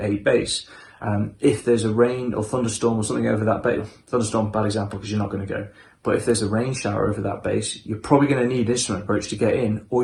a base, if there's a rain or thunderstorm or something over that base, thunderstorm, bad example because you're not going to go, but if there's a rain shower over that base, you're probably going to need instrument approach to get in,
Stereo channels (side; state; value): both; identical; correlation 1.00